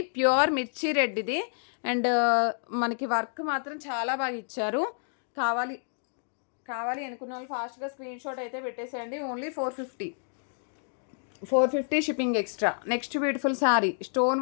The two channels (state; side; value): silent; right; digital silence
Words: ప్యూర్ మిర్చి రెడ్ ఇది. అండ్ మనకి వర్క్ మాత్రం చాలా బాగా ఇచ్చారు. కావాలి అనుకున్న వాళ్ళు ఫాస్ట్గా స్క్రీన్ షాట్ అయితే పెట్టేసేయండి. Only 450 shipping extra. Next beautiful sari, stone